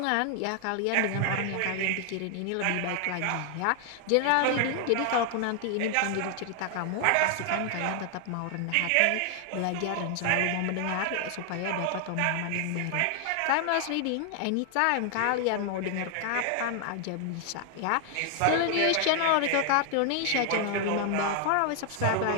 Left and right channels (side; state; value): both; different; correlation 0.00